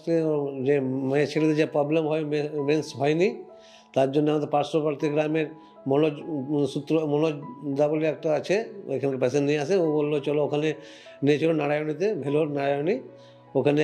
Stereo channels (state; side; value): identical; both; correlation 1.00